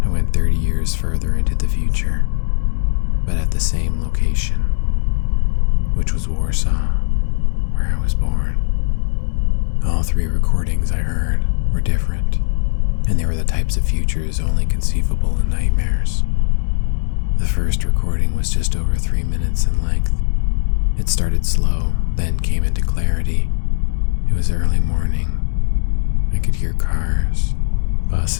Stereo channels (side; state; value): right; silent; digital silence